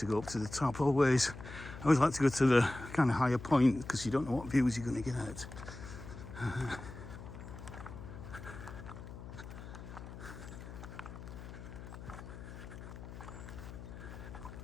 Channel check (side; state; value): left; noise; hum, 12 dB below the sound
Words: go up to the top always. I always like to go to the kind of higher point because you don't know what views you're going to get.